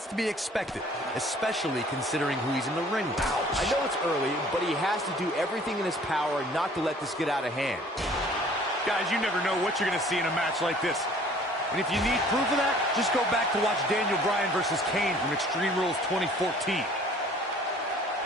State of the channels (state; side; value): normal; both; correlation 0.53